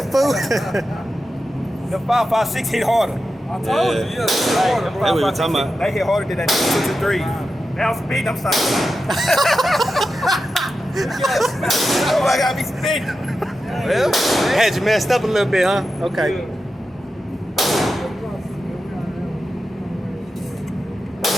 fool. The 5.56 hit harder. I told you, yeah, it's harder, bro. That's what we were talking about. They hit harder than that 223. Now I'm speeding, I'm sorry. Oh, I gotta be speeding. Well, had you messed up a little bit, huh? Okay.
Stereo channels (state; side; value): normal; both; correlation 0.90